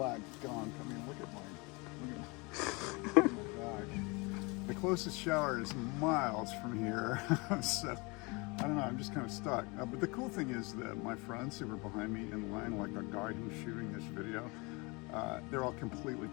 gunk. I mean, look at my back. The closest shower is miles from here, so I don't know, I'm just kind of stuck. But the cool thing is that my friends who were behind me in line, like the guy who's shooting this video, they're all completely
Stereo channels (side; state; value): right; quieter; 27.5 dB